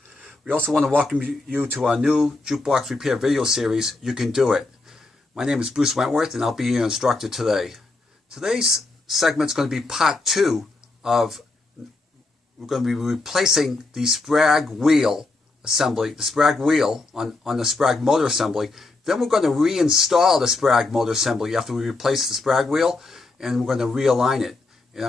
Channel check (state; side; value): quieter; right; 3.3 dB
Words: We also want to welcome you to our new jukebox repair video series, You Can Do It. My name is Bruce Wentworth and I'll be your instructor today. Today's segment is going to be part 2 of, we're going to be replacing the Spragg wheel assembly, the Spragg wheel on the Spragg motor assembly. Then we're going to reinstall the Spragg motor assembly after we replace the Spragg wheel, and we're going to realign it. And